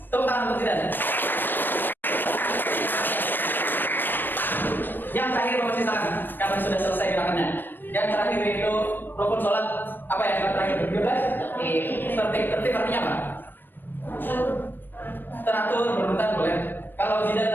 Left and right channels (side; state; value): right; late; 0.094 ms